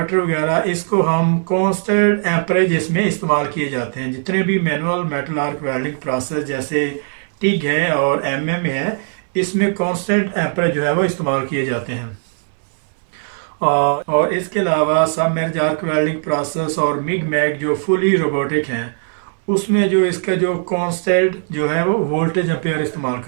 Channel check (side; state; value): left; silent; digital silence